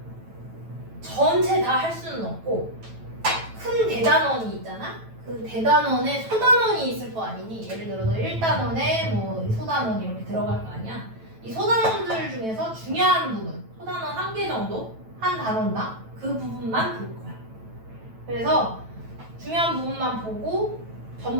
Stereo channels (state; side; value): late; left; 9.1 ms